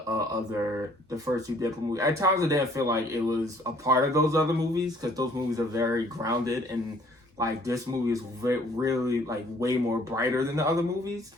first 2 Deadpool movies. At times, I didn't feel like it was a part of those other movies because those movies are very grounded and this movie is really way more brighter than the other movies.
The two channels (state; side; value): normal; both; correlation 0.59